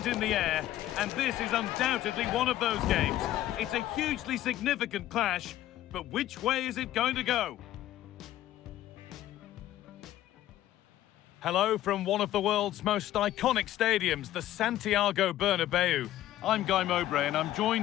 in the air, and this is undoubtedly one of those games. It's a hugely significant clash, but which way is it going to go? Hello from one of the world's most iconic stadiums, the Santiago Bernabeu. I'm Guy Mowbray and I'm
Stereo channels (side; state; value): right; quieter; 13.7 dB